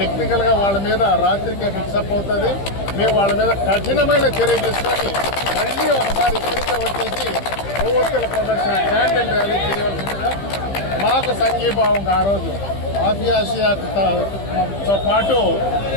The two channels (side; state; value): right; late; 15 ms